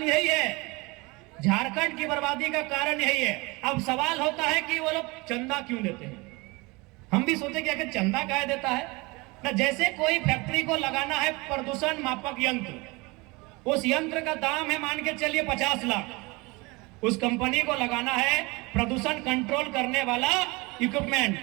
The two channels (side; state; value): left; quieter; 25.0 dB